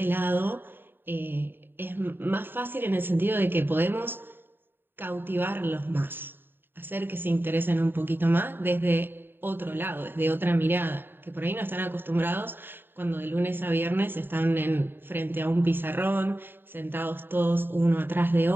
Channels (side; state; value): left; late; 0.098 ms